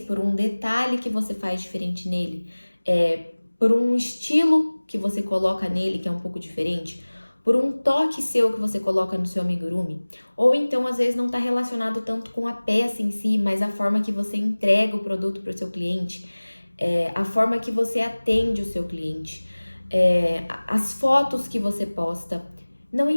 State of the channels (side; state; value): both; inverted; correlation -1.00